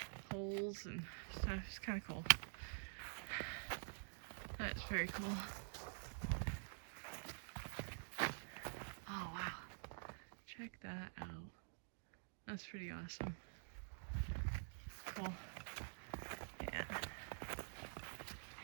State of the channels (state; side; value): silent; left; digital silence